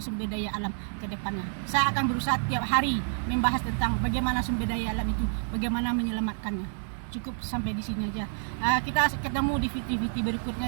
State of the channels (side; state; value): left; silent; 59 dB below the other